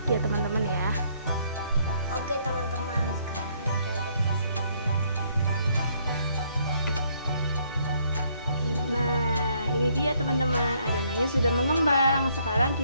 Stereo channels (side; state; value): both; inverted; correlation -0.68